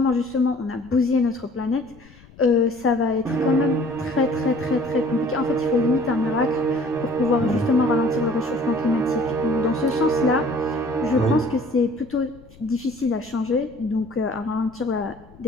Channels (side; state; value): left; noise; rumble, 24 dB below the sound